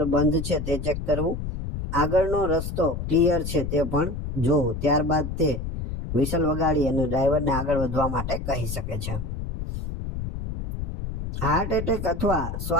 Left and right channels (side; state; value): left; noise; rumble, 5 dB below the sound